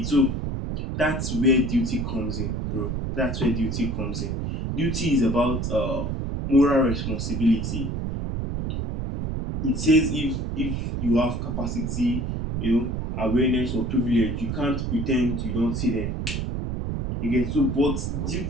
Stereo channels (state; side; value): noise; right; rumble, 2 dB below the sound